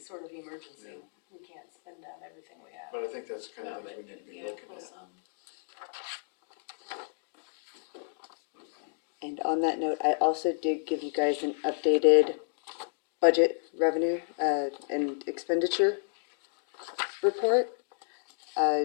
of emergency. We can't spend down everything we have. But I think that's the kind no, of but things we need to be yeah, looking pull at. some. And on that note, I also did give you guys an updated budget revenue, and expenditure report.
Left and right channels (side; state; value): right; silent; digital silence